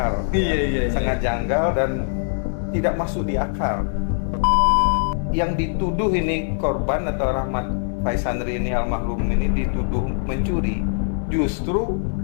Iya. Sangat janggal dan tidak masuk di akal. Yang dituduh ini korban atau Rahmat Faisandri ini almarhum ini dituduh mencuri, justru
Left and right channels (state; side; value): silent; right; digital silence